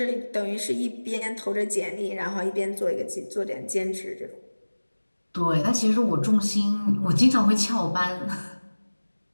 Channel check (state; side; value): inverted; both; correlation -1.00